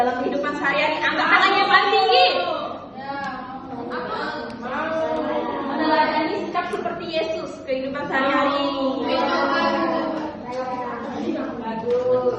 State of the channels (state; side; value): identical; both; correlation 1.00